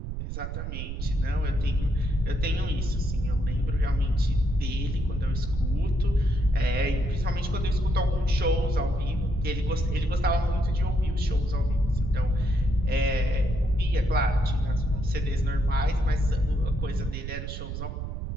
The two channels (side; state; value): right; noise; rumble, 5 dB below the sound